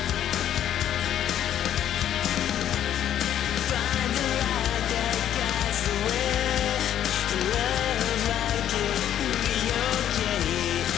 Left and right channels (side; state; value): right; quieter; 10.7 dB